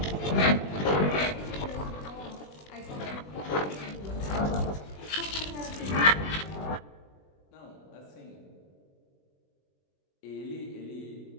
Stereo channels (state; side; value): late; right; 20 ms